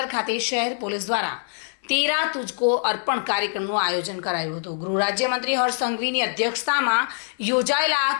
ખાતે શહેર પોલીસ દ્વારા તેરા તુજકો અર્પણ કાર્યક્રમનું આયોજન કરાયું હતું। ગૃહ રાજ્યમંત્રી હર્ષ સંઘવીની અધ્યક્ષતામાં યોજાયેલા આ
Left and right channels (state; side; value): silent; right; digital silence